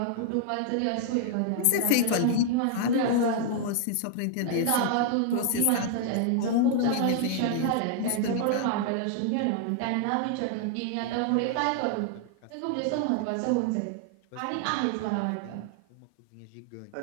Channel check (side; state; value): both; different; correlation 0.00